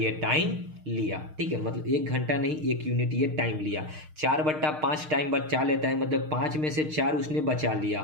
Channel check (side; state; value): left; late; 6.5 ms